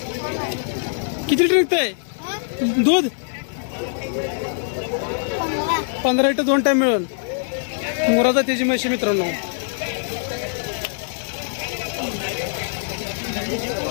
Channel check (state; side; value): silent; right; digital silence